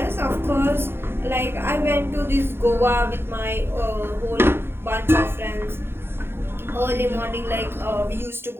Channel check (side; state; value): left; late; 0.11 ms